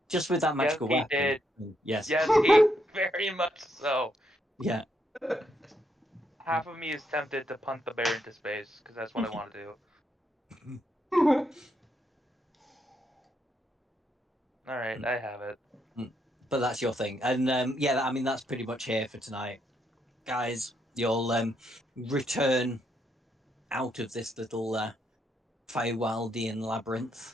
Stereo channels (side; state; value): both; normal; correlation 0.77